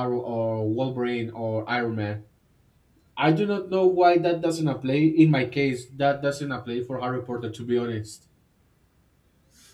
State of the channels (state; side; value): identical; both; correlation 1.00